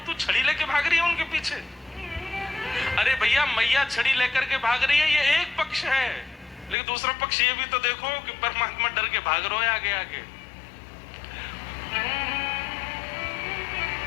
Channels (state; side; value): drops out; right; at 6.8 s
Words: तू छड़ी लेके भाग रही है उनके पीछे। अरे भैया मैया छड़ी लेकर के भाग रही है, ये एक पक्ष है, लेकिन दूसरा पक्ष ये भी तो देखो कि परमात्मा डर के भाग रहे हो आगे आगे।